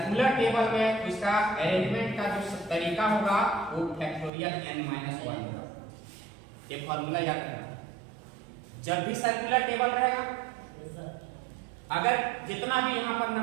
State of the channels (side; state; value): left; drops out; at 4.3 s